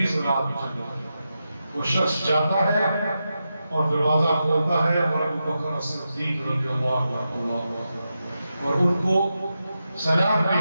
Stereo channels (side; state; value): both; inverted; correlation -0.89